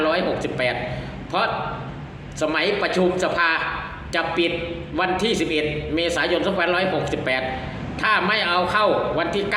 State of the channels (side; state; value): both; identical; correlation 1.00